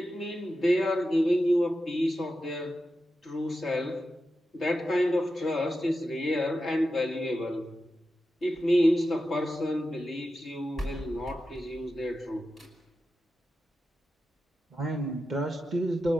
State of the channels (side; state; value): both; normal; correlation 0.91